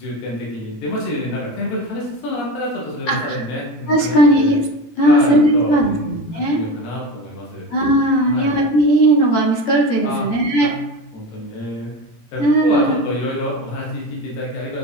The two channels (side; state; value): right; late; 17 ms